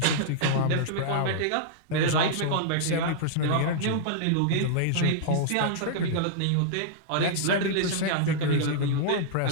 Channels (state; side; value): different; both; correlation -0.02